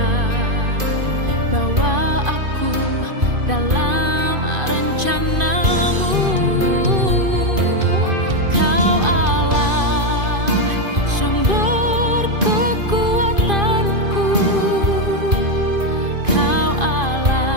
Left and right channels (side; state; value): left; late; 2.5 ms